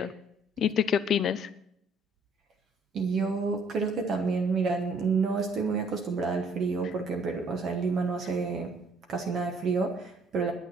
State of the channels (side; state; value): both; normal; correlation 0.61